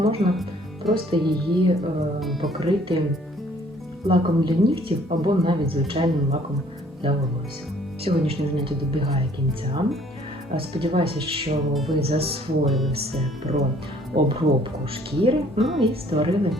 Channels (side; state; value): both; normal; correlation 0.58